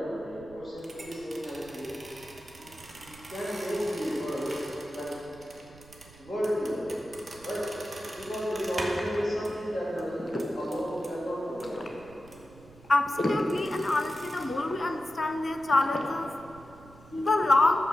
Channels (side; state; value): right; noise; rumble, 22 dB below the sound